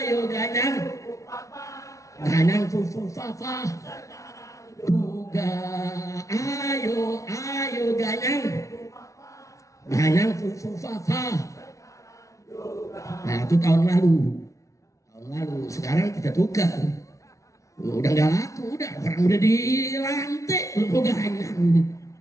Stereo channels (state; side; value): late; right; 0.15 ms